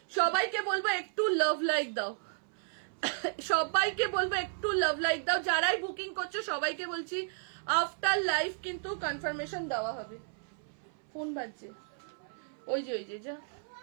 সবাইকে বলবো একটু লাভ লাইক দাও, সবাইকে বলবো একটু লাভ লাইক দাও। যারাই বুকিং করছো সবাইকে বলছি আফটার লাইফ কিন্তু কনফার্মেশন দেওয়া হবে। ফোন বাজছে, ওই যে যা,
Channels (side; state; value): left; silent; 56 dB below the other